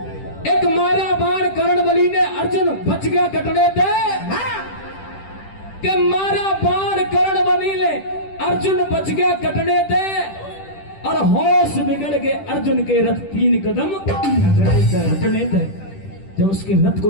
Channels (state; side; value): late; right; 10 ms